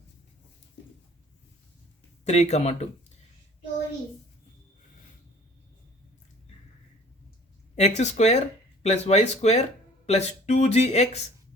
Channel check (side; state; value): both; normal; correlation 0.50